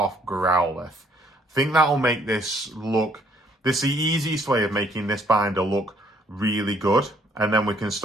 Growlithe. I think that'll make this look... This is the easiest way of making this binder look really good. And then we can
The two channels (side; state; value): both; normal; correlation 0.65